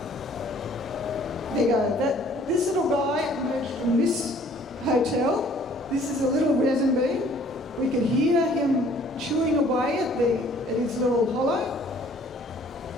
There you go. This little guy emerged from this hotel. This is a little resin bee. We could hear him chewing away at his little hollow.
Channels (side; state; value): both; normal; correlation 0.57